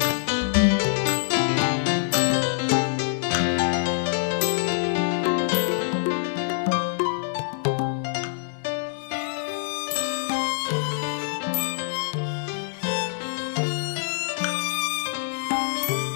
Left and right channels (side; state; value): right; silent; digital silence